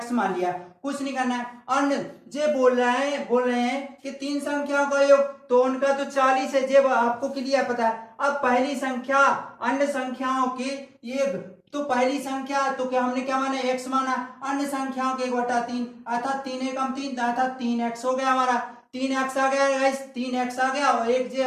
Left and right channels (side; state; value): both; identical; correlation 1.00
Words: मान लिया। कुछ नहीं करना है। अन्य जे बोल रहे हैं कि 3 संख्याओं का योग, तो उनका तो 40 है, जे आपको क्लियर पता है। अब पहली संख्या अन्य संख्याओं की योग, तो पहली संख्या तो क्या हमने क्या माना? x माना। अन्य संख्याओं के 1/3 अर्थात 3 एकम 3 अर्थात 3x हो गया हमारा। 3x आ गया गाइस, 3x आ गया और एक जे